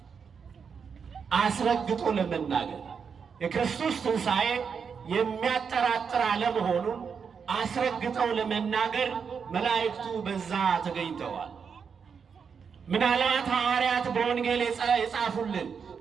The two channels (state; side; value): quieter; left; 6.3 dB